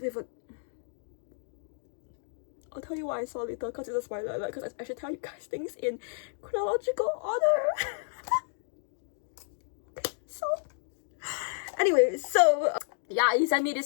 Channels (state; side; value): silent; right; digital silence